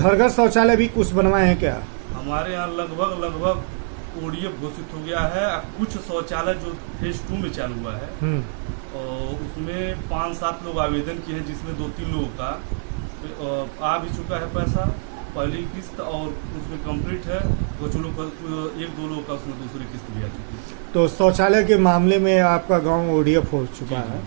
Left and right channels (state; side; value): silent; left; digital silence